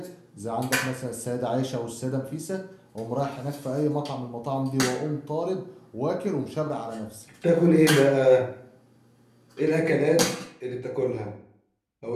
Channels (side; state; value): both; identical; correlation 1.00